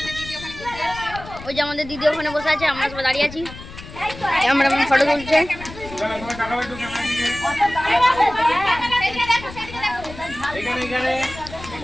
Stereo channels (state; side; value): noise; left; rumble, 14 dB below the sound